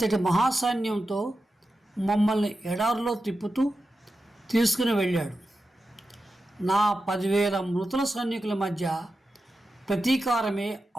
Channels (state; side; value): normal; both; correlation 0.91